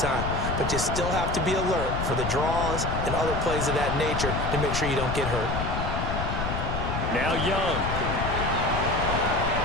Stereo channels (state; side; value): noise; left; rumble, 2 dB below the sound